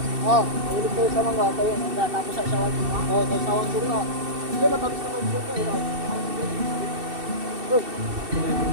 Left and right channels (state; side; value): late; left; 2.7 ms